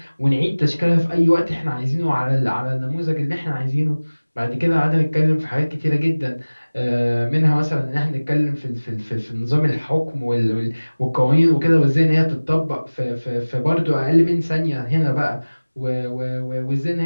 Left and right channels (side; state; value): both; inverted; correlation -1.00